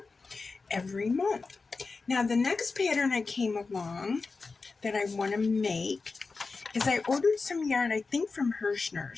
every month. Now the next pattern I came along that I want to make is I ordered some yarn, I think from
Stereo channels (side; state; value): right; quieter; 4.2 dB